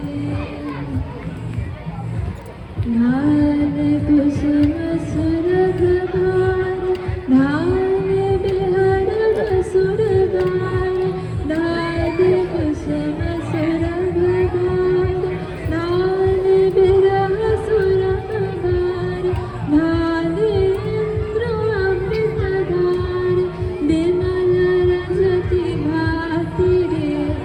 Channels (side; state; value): both; identical; correlation 1.00